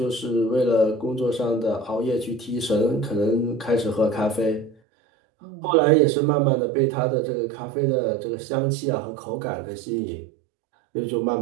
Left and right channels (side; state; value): left; drops out; at 4.8 s